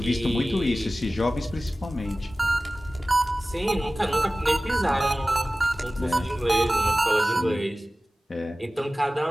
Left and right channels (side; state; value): both; normal; correlation 0.97